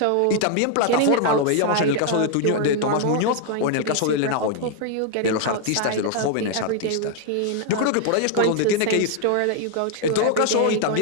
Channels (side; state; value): both; different; correlation 0.00